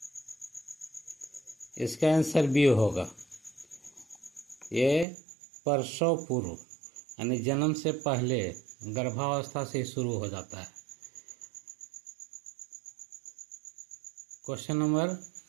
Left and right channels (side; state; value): left; drops out; at 5.1 s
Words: इसका आंसर बी होगा। ये प्रसव पूर्व यानी जन्म से पहले गर्भावस्था से शुरू हो जाता है। Question number